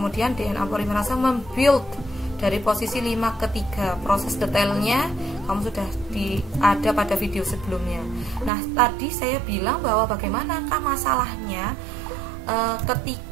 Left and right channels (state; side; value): drops out; left; at 8.5 s